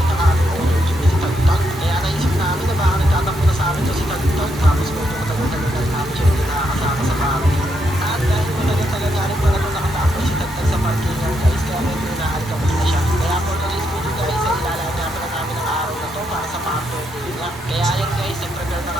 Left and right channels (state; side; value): normal; both; correlation 0.79